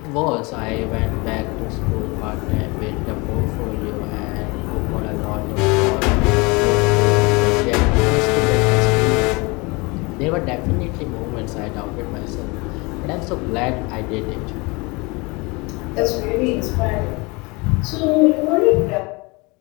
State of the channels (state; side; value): quieter; right; 26.6 dB